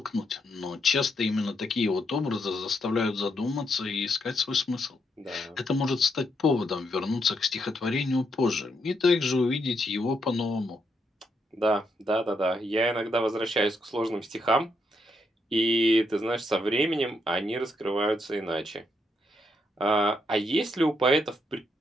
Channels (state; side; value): normal; both; correlation 0.78